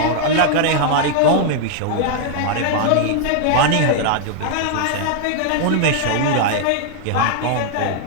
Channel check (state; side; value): different; both; correlation 0.00